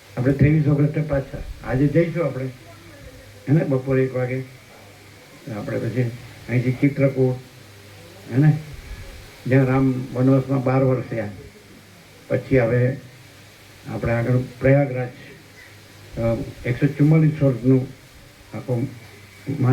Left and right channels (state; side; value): identical; both; correlation 1.00